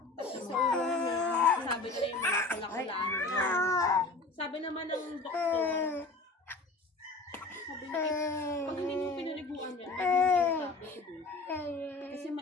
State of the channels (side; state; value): right; quieter; 3.4 dB